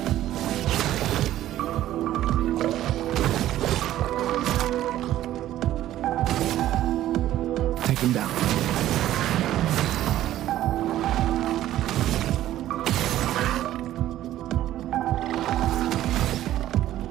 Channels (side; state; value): left; quieter; 13.4 dB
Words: Take them down.